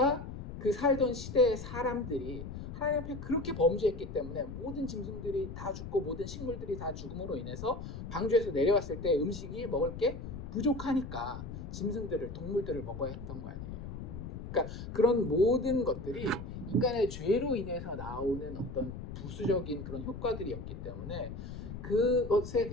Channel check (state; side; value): noise; left; rumble, 9 dB below the sound